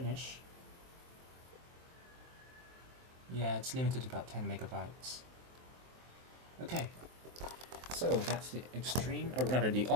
Yeah, it's limited to about 10 megabytes. Okay, so that's the Extreme, or rather the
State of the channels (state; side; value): late; left; 23 ms